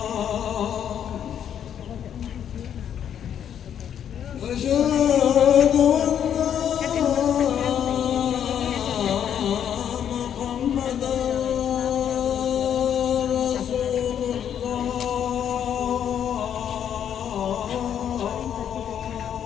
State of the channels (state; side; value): quieter; right; 9.2 dB